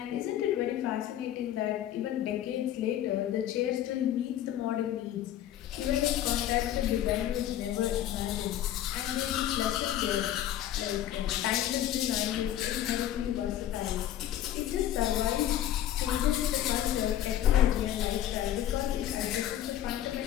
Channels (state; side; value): quieter; right; 12.0 dB